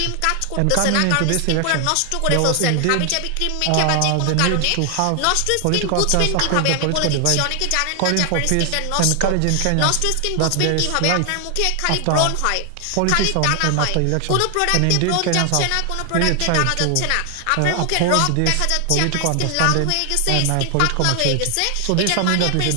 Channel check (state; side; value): different; both; correlation 0.00